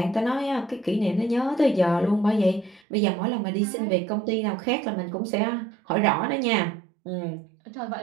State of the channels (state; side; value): drops out; left; at 2.8 s